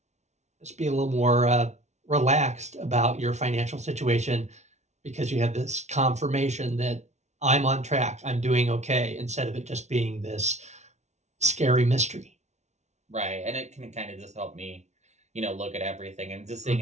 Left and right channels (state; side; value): late; left; 0.32 ms